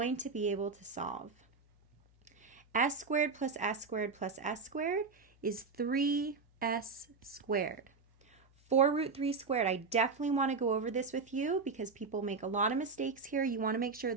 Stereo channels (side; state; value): left; quieter; 4.7 dB